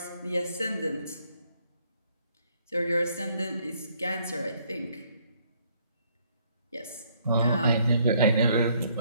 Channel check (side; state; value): both; inverted; correlation -0.67